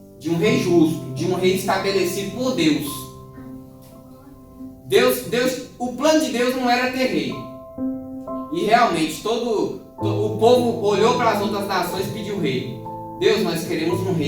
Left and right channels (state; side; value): identical; both; correlation 1.00